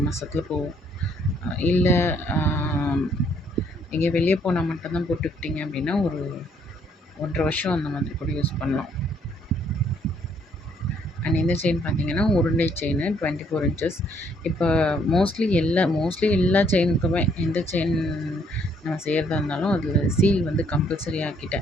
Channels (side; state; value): both; normal; correlation 0.67